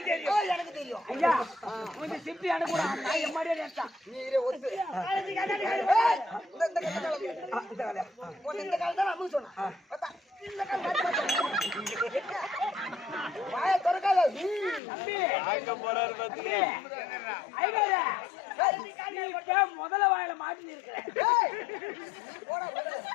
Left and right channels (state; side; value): drops out; right; at 14.8 s